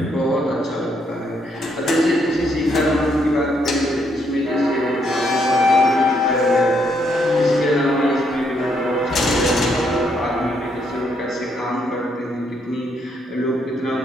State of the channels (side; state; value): both; normal; correlation 0.74